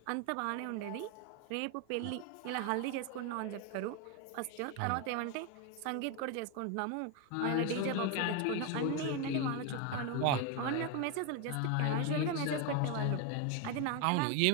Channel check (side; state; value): both; different; correlation 0.01